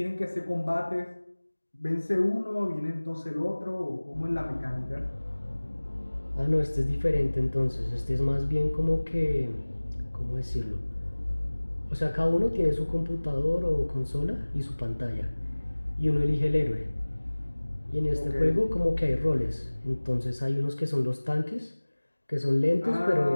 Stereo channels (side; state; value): both; inverted; correlation -1.00